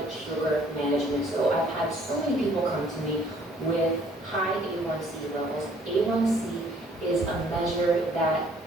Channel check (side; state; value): both; normal; correlation 0.60